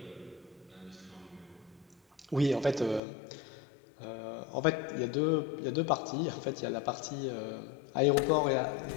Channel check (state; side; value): drops out; right; at 3.0 s